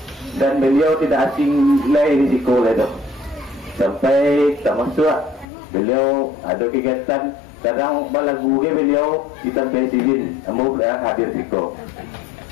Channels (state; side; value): drops out; right; at 5.5 s